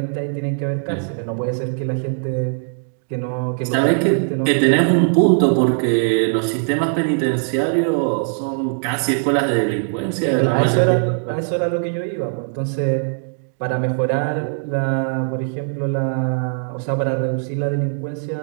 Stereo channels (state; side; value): silent; left; digital silence